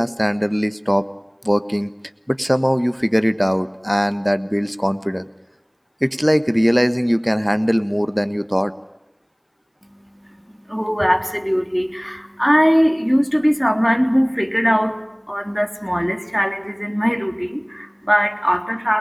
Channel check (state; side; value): identical; both; correlation 1.00